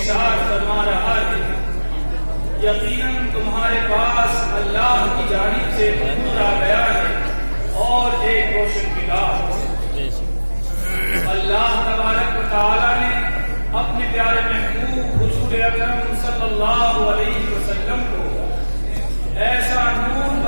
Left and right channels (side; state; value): both; inverted; correlation -1.00